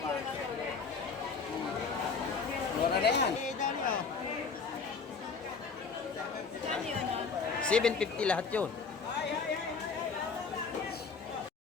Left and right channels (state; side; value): quieter; right; 5.0 dB